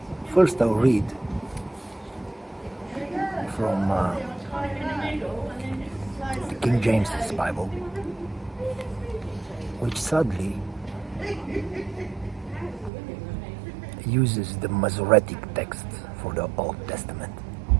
First I'll read from the King James's Bible, which sadly uses the Masoretic text for the Old Testament,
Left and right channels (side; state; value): left; drops out; at 12.9 s